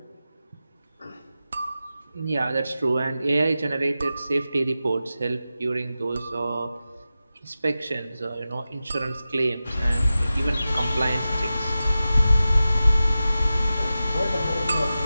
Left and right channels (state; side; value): inverted; both; correlation -0.93